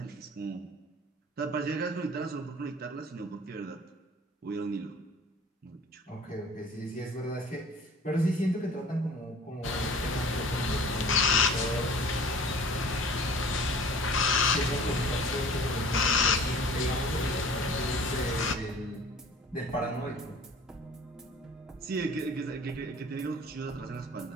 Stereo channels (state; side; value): normal; both; correlation 0.46